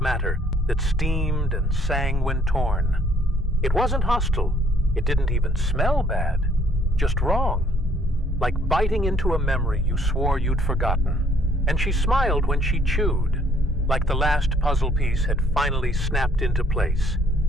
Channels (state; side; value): normal; both; correlation 0.63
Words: matter that steamed and sang when torn. It wasn't hostile. It didn't even smell bad, just wrong, like biting into a memory you swore you'd forgotten. And she smiled when she chewed, like the last puzzle piece had finally snapped into place.